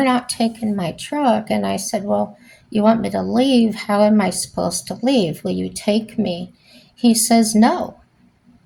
not taking my truck. And I said, well, you want me to leave? How am I supposed to leave? Will you take me? He says, no.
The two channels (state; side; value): identical; both; correlation 1.00